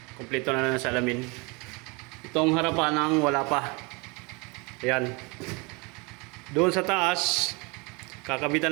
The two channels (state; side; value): quieter; left; 28.5 dB